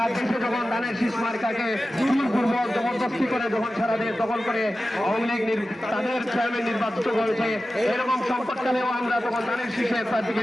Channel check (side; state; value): both; normal; correlation 0.94